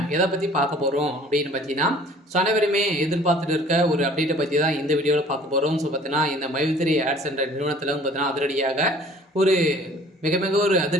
எதை பற்றி பார்க்க போகிறோம் அப்படின்னு பார்த்தீங்கன்னா, அனைவருமே எதிர்பார்த்துட்டு இருக்க ஒரு அப்டேட்டை பற்றி தான் இந்த வீடியோவில் பார்க்க போகிறோம். ஸோ பார்த்தீங்கன்னா, இந்த மைத்ரி ஆட்ஸ் என்ற நிறுவனத்தில் பார்த்தீங்கன்னா அதிரடியாக ஒரு மிக மிக ஒரு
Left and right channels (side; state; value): both; normal; correlation 0.51